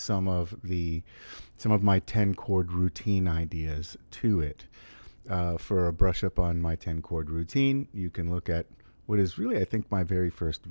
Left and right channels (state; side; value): inverted; both; correlation -1.00